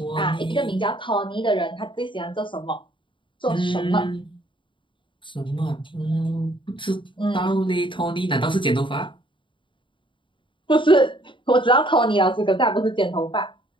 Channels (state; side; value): late; right; 0.24 ms